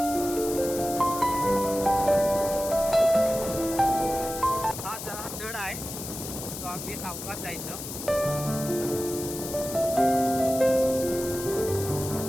हा जरा चढ आहे, तो अगदी सावकाश जायचं.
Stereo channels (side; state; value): left; noise; hiss, 9 dB below the sound